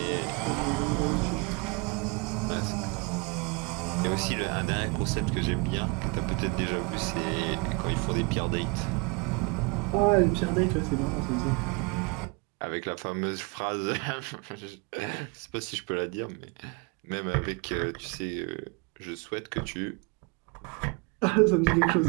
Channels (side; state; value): left; quieter; 28.6 dB